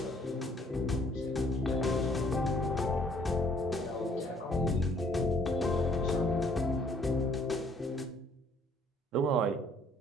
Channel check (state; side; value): normal; both; correlation 0.62